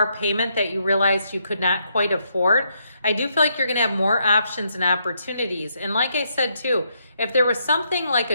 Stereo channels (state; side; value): inverted; both; correlation -0.77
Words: payment that you realized you could not quite afford, I do feel like you're going to have more options and opportunities. And like I said too, if there was something like